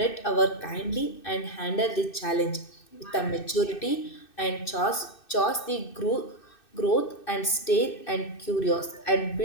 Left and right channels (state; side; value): late; right; 2.6 ms